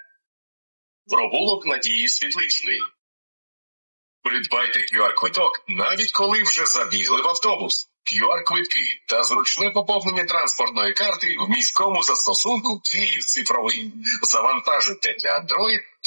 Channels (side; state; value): both; inverted; correlation -1.00